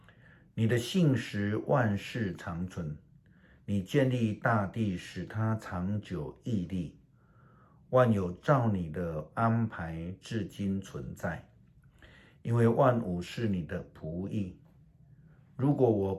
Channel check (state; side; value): identical; both; correlation 1.00